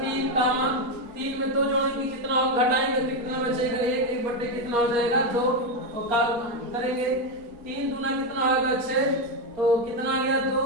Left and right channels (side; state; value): left; late; 4.3 ms